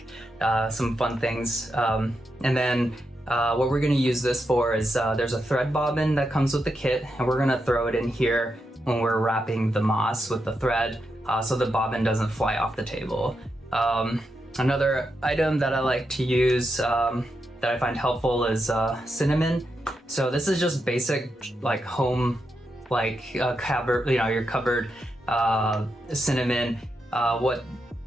some fun things. And then what we're gonna use this for is there's a thread bobbin that comes with the kit, and we're gonna throw it in here when we're wrapping the moss with the thread so the bobbin doesn't fly off the table. Another item that I like to use that I find helpful is cinnamon. So this is just basic like home, like cupboard, your cupboard cinnamon. What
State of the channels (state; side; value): normal; both; correlation 0.85